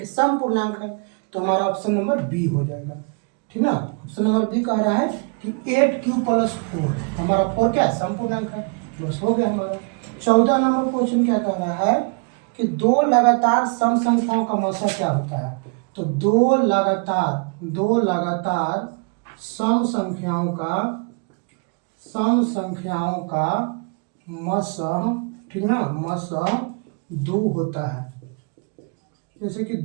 सम पूर्णांक है। तो हमारा ऑप्शन नंबर बी हो जाएगा, ठीक ना। ऑप्शन नंबर बी कह रहा है कि 8q + 4, हमारा 4 क्या है, सम पूर्णांक है, बस हो गया हमारा। 14 नंबर क्वेश्चन क्या कह रहा है कि दो लगातार सम संख्याओं का मसा क्या होता है। तो दो लगातार सम संख्याओं का मसह, ठीक ना, मसह 2 होता है। जैसे कि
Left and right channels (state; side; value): quieter; left; 36.7 dB